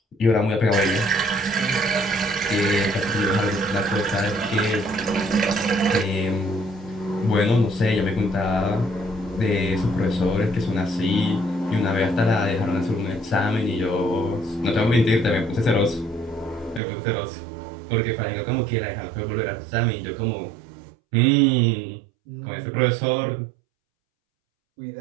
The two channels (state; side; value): drops out; left; at 16.8 s